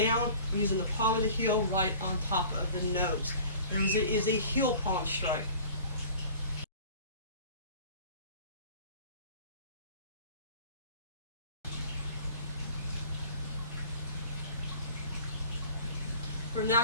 using the palm of the heel right on top of the nose. There is a heel palm strike. We're now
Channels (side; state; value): both; inverted; correlation -0.44